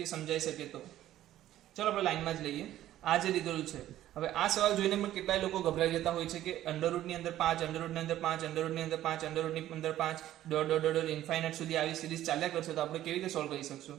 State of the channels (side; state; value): left; quieter; 13.2 dB